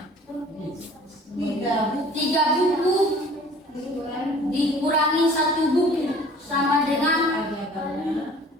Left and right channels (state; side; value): normal; both; correlation 0.49